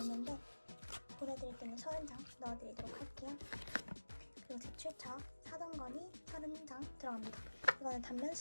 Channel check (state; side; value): inverted; both; correlation -1.00